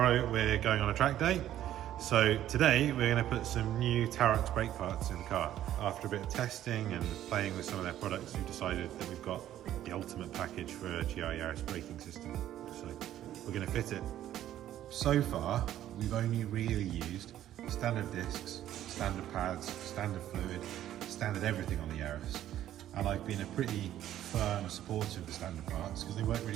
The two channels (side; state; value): left; quieter; 12.2 dB